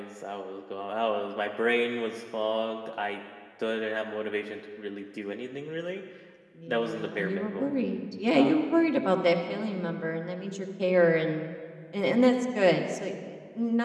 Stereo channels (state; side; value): identical; both; correlation 1.00